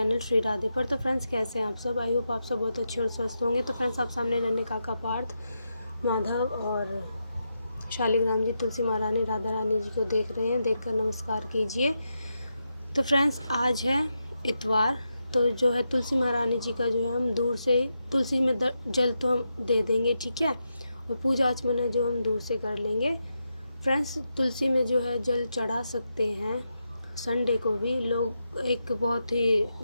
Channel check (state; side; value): inverted; both; correlation -0.86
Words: श्री राधे पर। तो फ्रेंड्स, कैसे हैं आप सब? आई होप आप सब बहुत अच्छे और स्वस्थ होंगे। तो फ्रेंड्स, आप सामने रहने काका पार्थ, माधव और शालिग्राम जी, तुलसी महारानी, राधा रानी जी को देख रहे हैं। देखकर नमस्कार कीजिए। तो फ्रेंड्स, आज है इतवार। तो जो है तुलसी महारानी जी का जो है हम दूर से तुलसी में जल तो हम दे देंगे, ठीक है, और पूजा आचमन जो हम दूर से कर लेंगे। फ्रेंड्स, तुलसी में जो है जल चढ़ा सकते हैं। संडे को भी लोग, एक बहुत ही